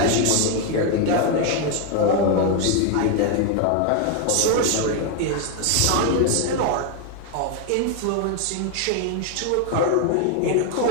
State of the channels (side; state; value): both; different; correlation 0.01